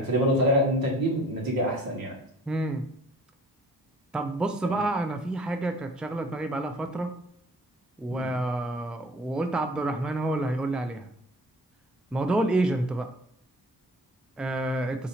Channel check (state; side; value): normal; both; correlation 0.50